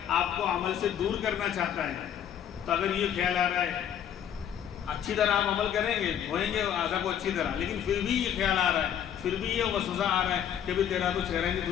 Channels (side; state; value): right; quieter; 9.5 dB